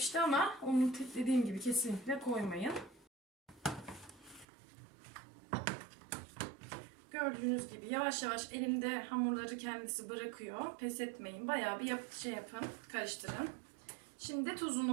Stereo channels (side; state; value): left; drops out; at 4.5 s